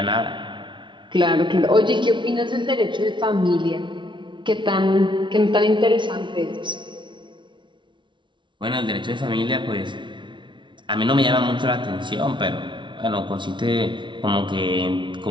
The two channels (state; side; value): late; left; 0.24 ms